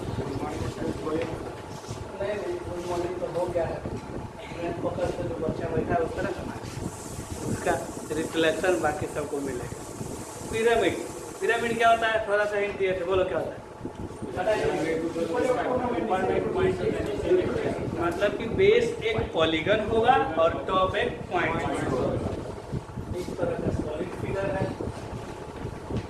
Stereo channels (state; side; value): identical; both; correlation 1.00